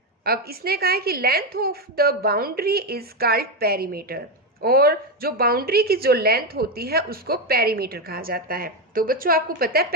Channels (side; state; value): both; normal; correlation 0.08